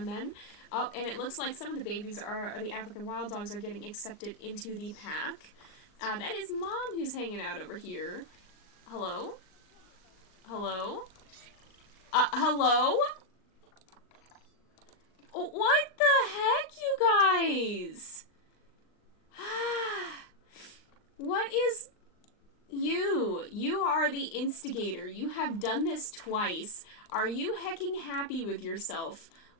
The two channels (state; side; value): late; right; 39 ms